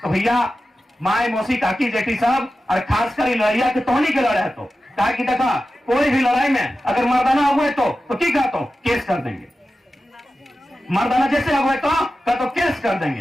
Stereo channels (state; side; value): normal; both; correlation 0.93